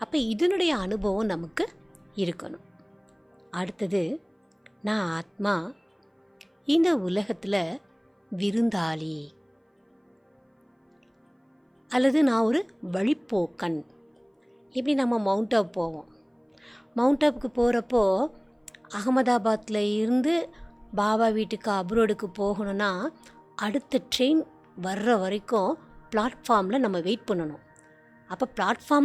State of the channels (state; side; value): identical; both; correlation 1.00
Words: அப்போ இதனுடைய அனுபவம் நமக்கு இருக்கணும். அடுத்தது, நான் ஆத்மா இந்த உலகத்தில் விருந்தாளி அல்லது நான் ஒரு வழிப்போக்கன். இப்படி நம்ம மவுண்ட் ஆப் போவோம். மவுண்ட் ஆப்புக்கு போகிறப்போ அகமதாபாத்தில் இருந்து பாபா வீட்டுக்கு அப்ரோடுக்கு போகணுன்னா அடுத்த ட்ரெயின் வர்ற வரைக்கும் பிளாட்ஃபார்மில் நம்ம வெயிட் பண்ணணும். அப்போ